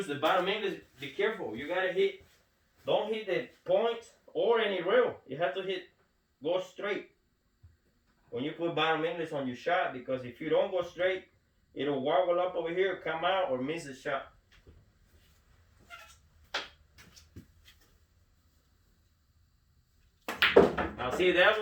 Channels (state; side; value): identical; both; correlation 1.00